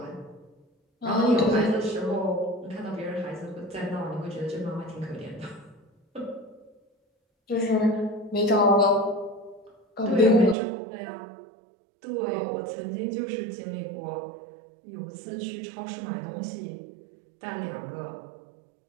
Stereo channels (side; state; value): left; drops out; at 10.6 s